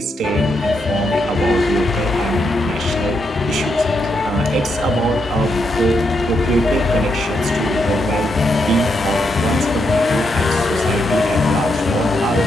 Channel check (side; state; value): both; normal; correlation 0.80